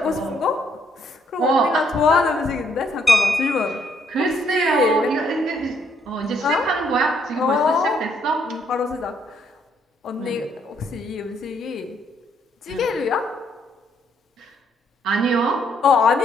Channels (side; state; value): both; normal; correlation 0.70